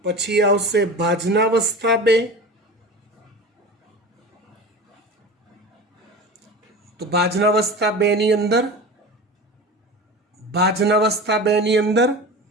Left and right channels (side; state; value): both; normal; correlation 0.32